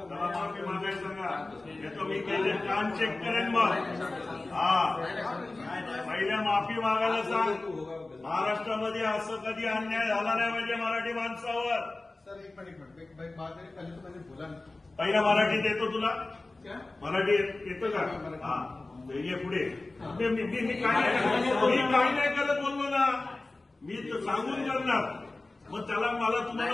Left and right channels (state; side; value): quieter; right; 3.1 dB